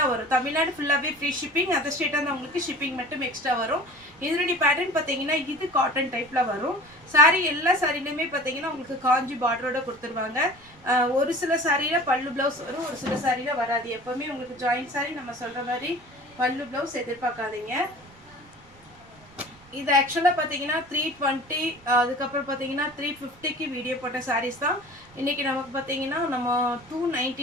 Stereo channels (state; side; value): noise; right; rumble, 26 dB below the sound